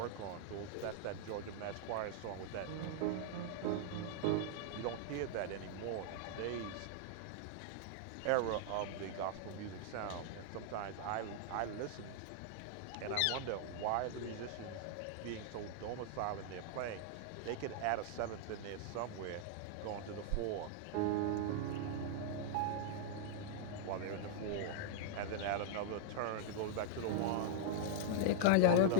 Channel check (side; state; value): both; different; correlation -0.01